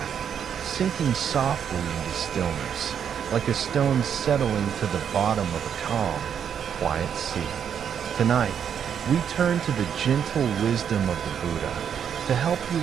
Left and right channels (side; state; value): left; quieter; 8.2 dB